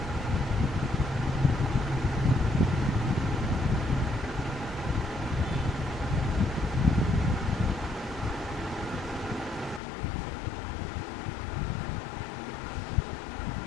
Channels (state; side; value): drops out; right; at 9.8 s